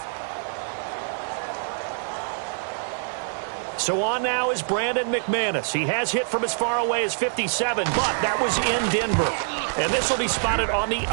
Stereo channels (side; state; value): left; silent; digital silence